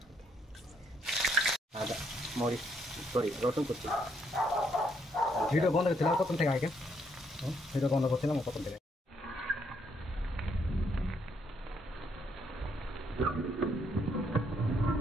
আদা, মরিচ, সরি রসুন করছি। ভিডিও বন্ধ করছিলাম প্রথম থেকে, আগে ভিডিও বন্ধ করছিলাম প্রথম থেকে।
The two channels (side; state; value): both; normal; correlation 0.72